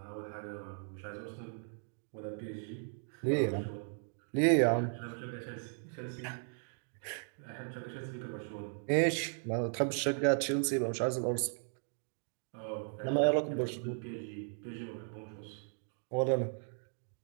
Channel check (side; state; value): left; silent; 53 dB below the other